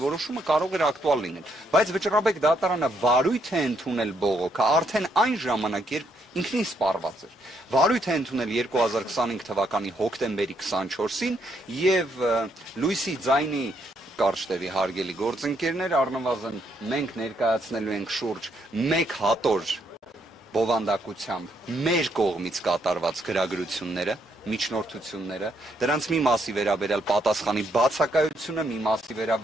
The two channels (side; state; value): both; normal; correlation 0.74